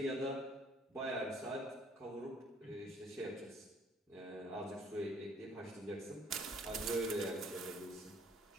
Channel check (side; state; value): both; normal; correlation 0.59